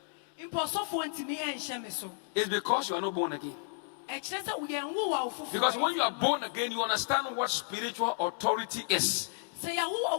It's because you are not born again. Because when you are born again, you understand what spiritual authority is.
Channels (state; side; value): silent; right; digital silence